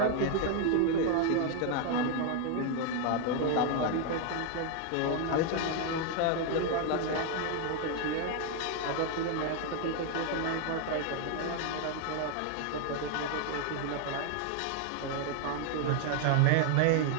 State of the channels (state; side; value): different; both; correlation 0.00